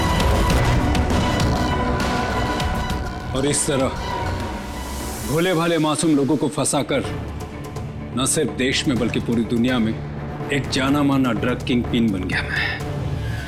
और इस तरह भोले भाले मासूम लोगों को फंसाकर न सिर्फ देश में बल्कि पूरी दुनिया में एक जाना माना ड्रग किंग पिन बन गया मैं।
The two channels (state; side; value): identical; both; correlation 1.00